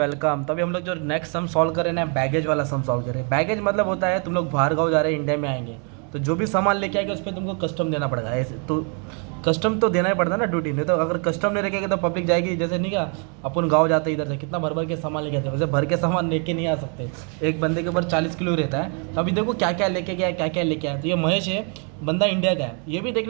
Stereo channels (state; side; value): quieter; left; 38.7 dB